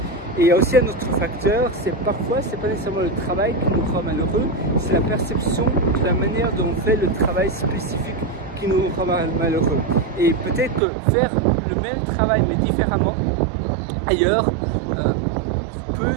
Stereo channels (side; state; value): left; drops out; at 10.8 s